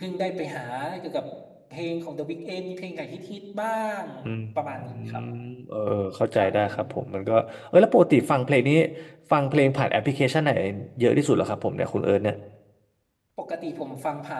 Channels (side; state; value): both; identical; correlation 1.00